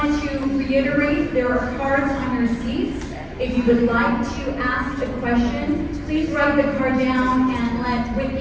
to reiterate, there are cards on your seats. If you would like to ask a question, please write the card down and let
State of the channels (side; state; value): both; identical; correlation 1.00